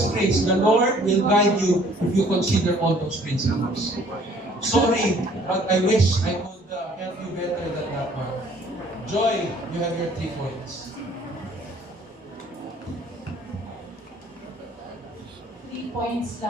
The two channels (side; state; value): both; normal; correlation 0.57